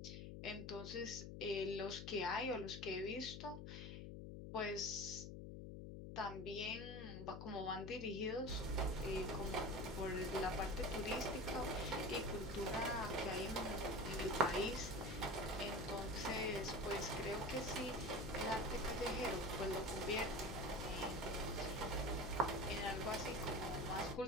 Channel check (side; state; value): left; noise; hum, 8 dB below the sound